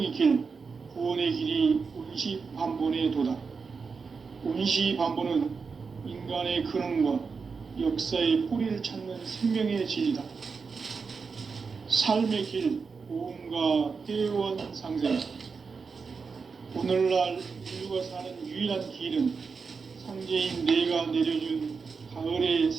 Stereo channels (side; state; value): left; quieter; 5.1 dB